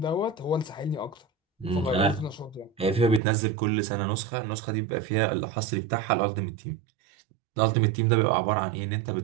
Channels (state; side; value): drops out; left; at 3.2 s